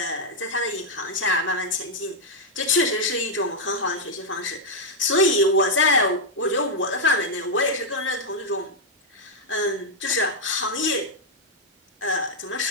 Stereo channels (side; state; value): both; normal; correlation -0.03